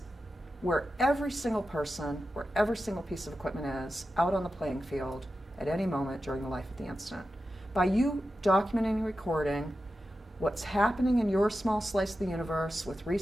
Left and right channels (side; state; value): both; normal; correlation 0.91